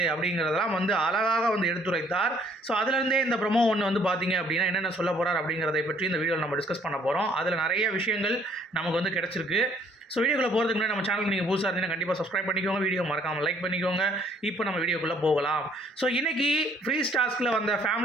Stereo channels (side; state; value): both; normal; correlation 0.62